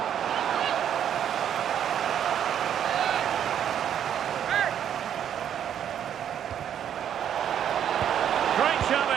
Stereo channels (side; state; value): left; quieter; 9.4 dB